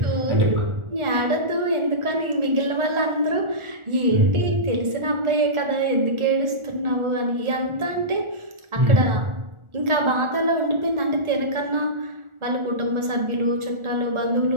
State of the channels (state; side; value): late; left; 1.4 ms